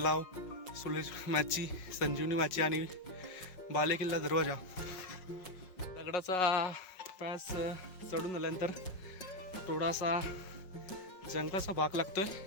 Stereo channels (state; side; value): late; right; 5.4 ms